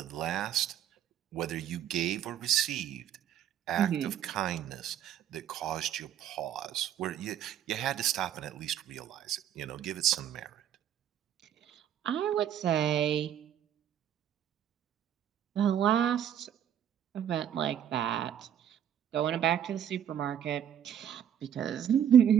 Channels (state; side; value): quieter; left; 9.8 dB